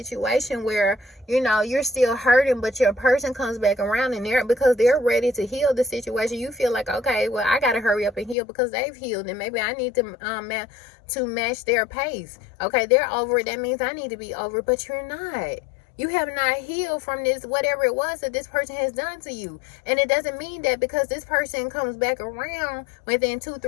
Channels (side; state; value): right; drops out; at 8.3 s